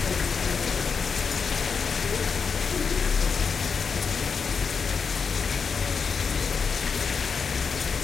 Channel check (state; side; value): quieter; right; 5.7 dB